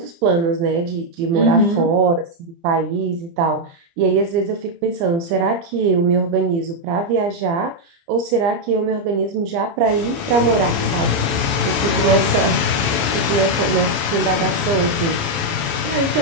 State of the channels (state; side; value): late; left; 30 ms